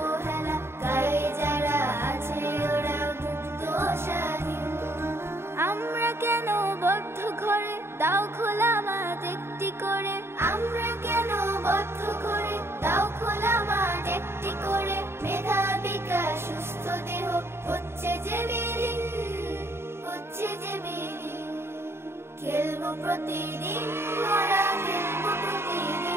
গায়ে যারা আছে ওরা মুক্ত স্বাধীন। আমরা কেন বদ্ধ ঘরে, দাও খোলা মাঠ একটি করে। আমরা কেন বদ্ধ ঘরে, দাও খোলা মাঠ একটি করে। মেধা বিকাশ সুস্থ দেহ হচ্ছে যে বিলীন, হচ্ছে যে বিলীন। খেলবো প্রতিদিন মোরা, খেলবো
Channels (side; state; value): left; late; 0.12 ms